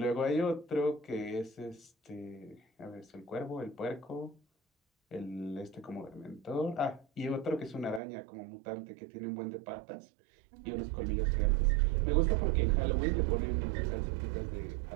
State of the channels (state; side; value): drops out; left; at 8.0 s